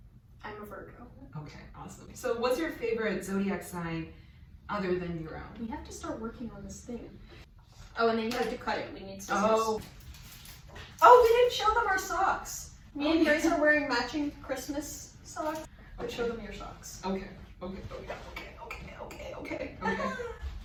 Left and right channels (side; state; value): both; identical; correlation 1.00